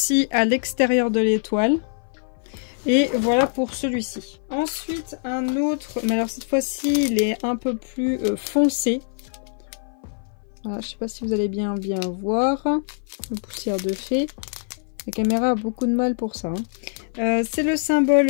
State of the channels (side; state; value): right; silent; 57 dB below the other